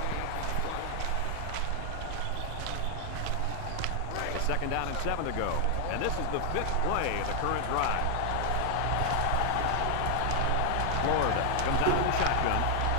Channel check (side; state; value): both; different; correlation 0.00